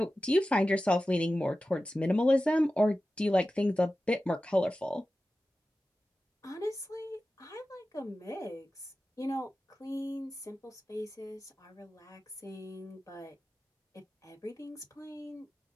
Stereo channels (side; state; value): both; normal; correlation 0.94